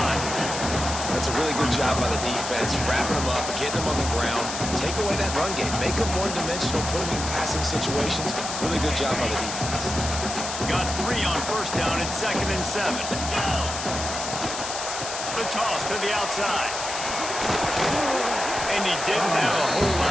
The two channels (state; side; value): noise; left; hiss, 6 dB below the sound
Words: That's a really good job by the defense, wrapping them up, getting them on the ground, take away that run game, make them one-dimensional, put them in passing situations. Really good job by the defense. Got 3 on first down and 2nd and 7. The toss to the outside. And he didn't have a whole